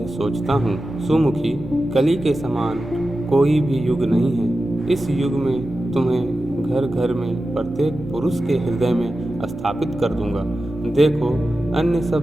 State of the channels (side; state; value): both; normal; correlation 0.93